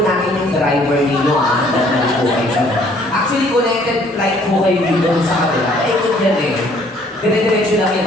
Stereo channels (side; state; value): both; normal; correlation 0.60